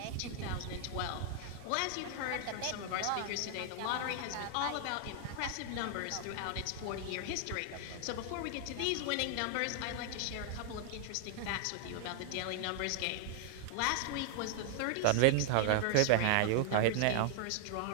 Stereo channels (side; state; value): both; different; correlation 0.00